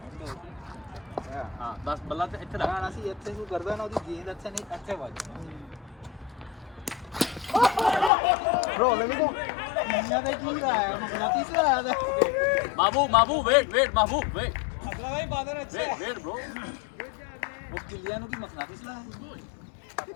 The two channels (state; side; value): drops out; right; at 8.1 s